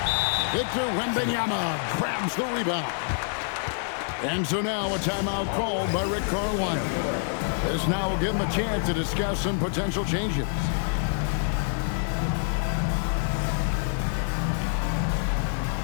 Victor Wembanyama grabs the rebound. And so now a timeout called by Rick Carlisle. This now will give him a chance to discuss some potential changes.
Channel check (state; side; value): silent; right; digital silence